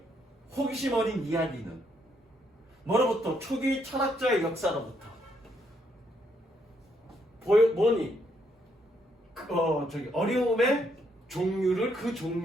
호기심 어린 이야기는 뭐로부터 초기 철학자의 역사로부터 뭐니? 어려움의 종류를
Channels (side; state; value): both; normal; correlation 0.74